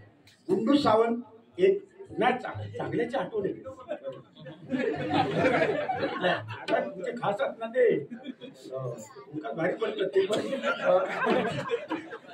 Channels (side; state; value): both; identical; correlation 1.00